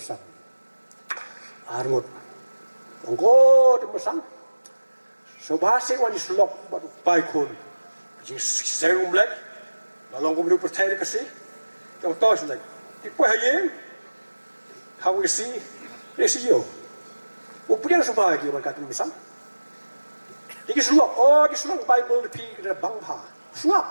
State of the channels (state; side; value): inverted; both; correlation -1.00